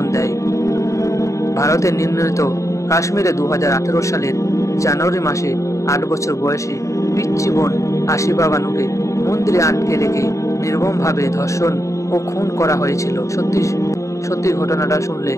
দেয়। ভারতের নির্ণীত কাশ্মীরে 2018 সালের জানুয়ারি মাসে 8 বছর বয়সী পিচ্চি বোন আসিফা বানুকে মন্দিরে আটকে রেখে নির্মমভাবে ধর্ষণ ও খুন করা হয়েছিল। সত্যি সত্যি ঘটনাটা শুনলে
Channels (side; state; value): right; late; 0.15 ms